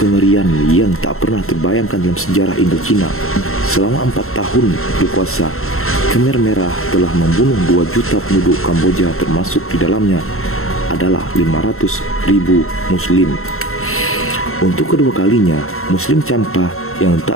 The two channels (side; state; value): right; late; 0.62 ms